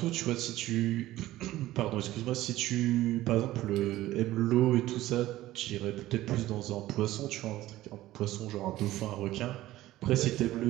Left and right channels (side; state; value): left; quieter; 15.7 dB